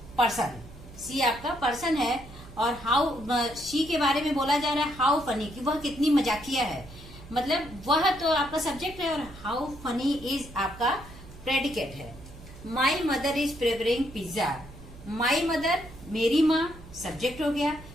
पर्सन, सी आपका पर्सन है। और हाउ, शी के बारे में बोला जा रहा है हाउ फनी, कि वह कितनी मजाकिया है, मतलब वह तो आपका सब्जेक्ट है। और हाउ फनी इज आपका प्रेडिकेट है। My mother is preparing pizza. My mother मेरी माँ सब्जेक्ट हो गया,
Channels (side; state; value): right; noise; hum, 18 dB below the sound